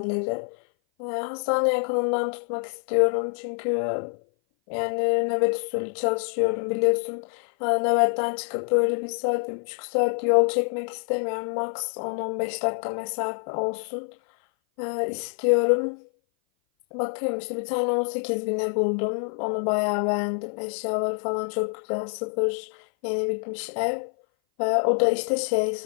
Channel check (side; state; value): right; silent; 57 dB below the other